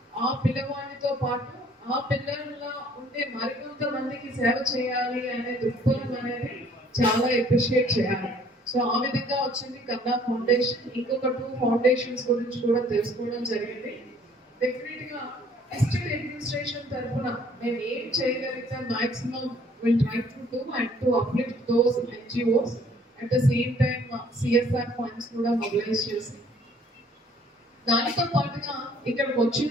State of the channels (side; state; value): both; normal; correlation 0.59